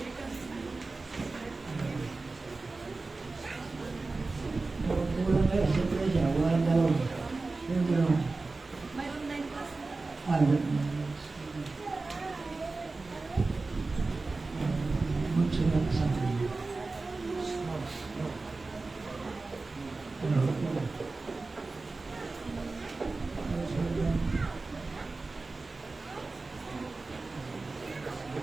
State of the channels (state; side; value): quieter; left; 3.6 dB